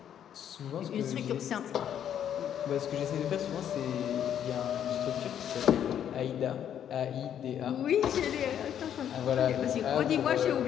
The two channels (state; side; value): quieter; right; 9.6 dB